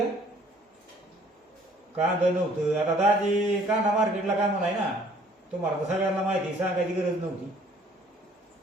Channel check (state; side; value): normal; both; correlation 0.58